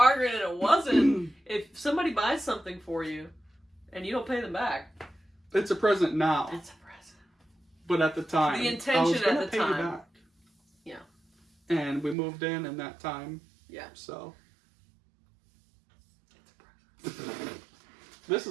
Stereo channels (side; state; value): left; drops out; at 12.2 s